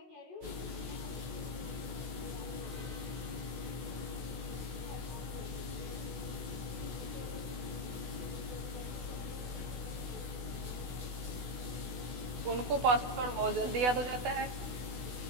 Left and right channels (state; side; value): late; left; 16 ms